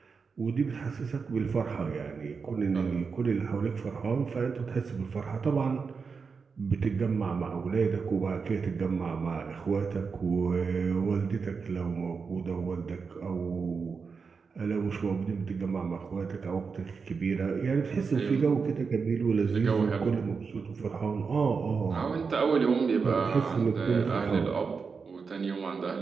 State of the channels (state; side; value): quieter; left; 5.2 dB